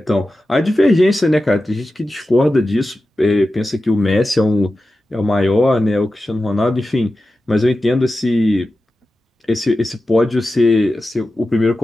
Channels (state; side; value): normal; both; correlation 0.93